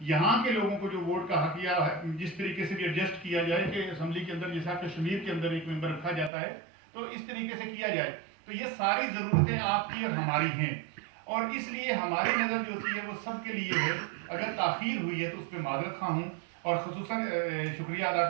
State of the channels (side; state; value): left; drops out; at 6.3 s